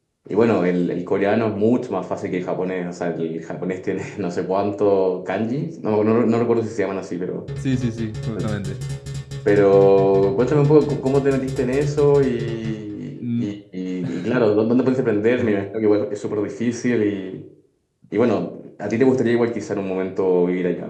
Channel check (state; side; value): identical; both; correlation 1.00